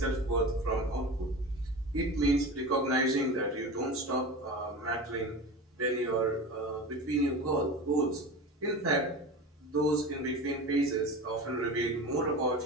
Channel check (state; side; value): normal; both; correlation 0.30